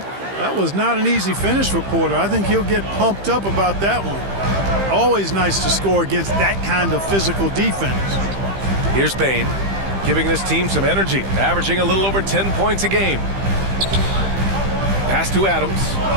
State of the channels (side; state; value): left; late; 15 ms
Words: That was not an easy finish for Porter. I think he'll get pumped up about that one. Always nice to score against that kind of physical defense. Here's Bane, giving this team some energy, averaging a little over 10 points a game. Pass to Adams.